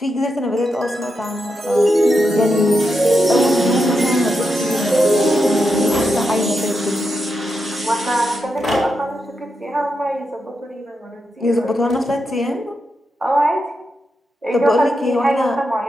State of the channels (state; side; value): normal; both; correlation 0.86